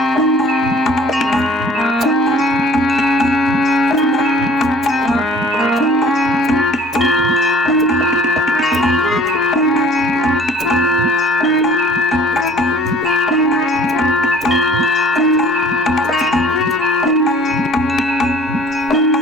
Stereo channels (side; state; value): both; normal; correlation 0.50